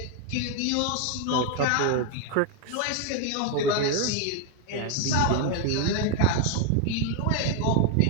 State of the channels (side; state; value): both; different; correlation 0.01